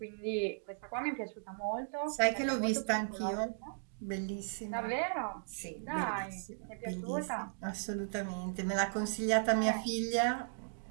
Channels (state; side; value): silent; left; digital silence